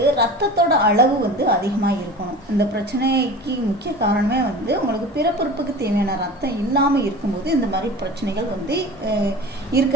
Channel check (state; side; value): normal; both; correlation 0.36